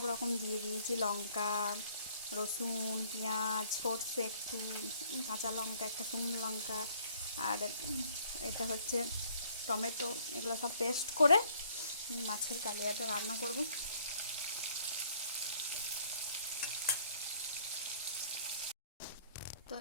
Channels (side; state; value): both; inverted; correlation -0.61